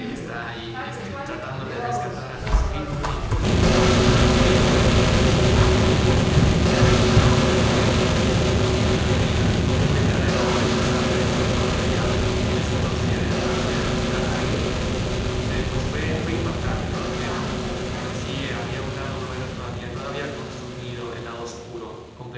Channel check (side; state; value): both; identical; correlation 1.00